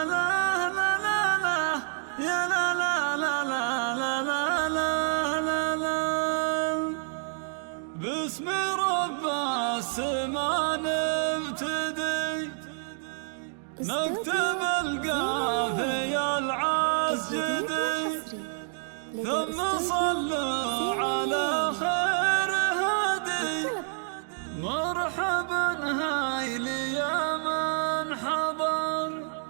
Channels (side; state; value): left; silent; 59 dB below the other